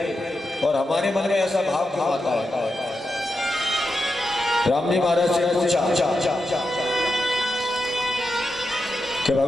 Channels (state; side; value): normal; both; correlation 0.88